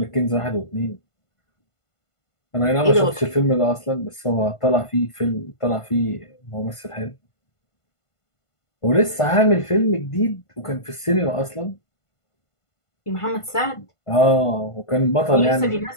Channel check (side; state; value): right; late; 1.5 ms